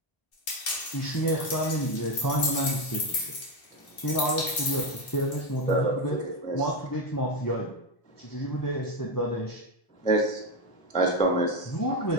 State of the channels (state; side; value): late; right; 1.0 ms